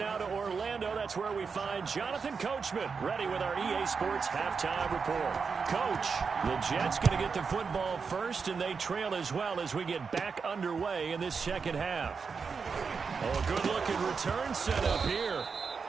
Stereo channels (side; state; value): left; quieter; 5.4 dB